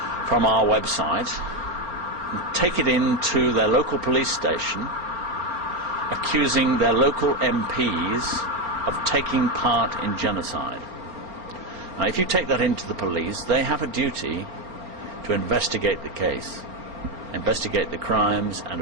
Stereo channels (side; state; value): left; late; 4.4 ms